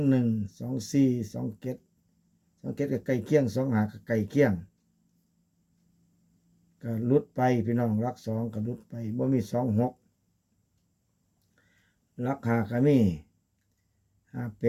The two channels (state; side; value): identical; both; correlation 1.00